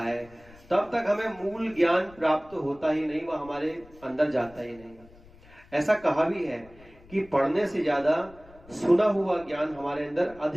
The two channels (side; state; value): left; noise; rumble, 24 dB below the sound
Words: तब तक हमें मूल ज्ञान प्राप्त होता ही नहीं, वह हमारे अंदर जाता ही नहीं। ऐसा कहा भी है कि पढ़ने से ज्यादा सुना हुआ ज्ञान हमारे अंदर